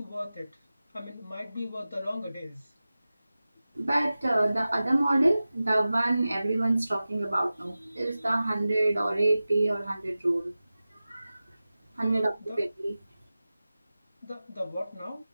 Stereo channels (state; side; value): inverted; both; correlation -0.96